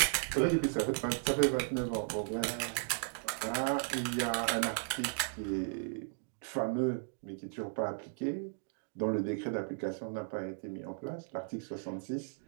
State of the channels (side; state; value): left; silent; digital silence